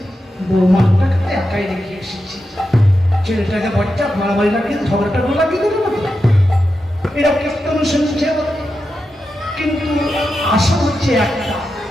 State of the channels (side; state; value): both; normal; correlation 0.89